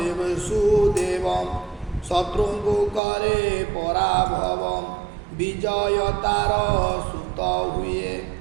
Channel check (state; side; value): drops out; left; at 3.0 s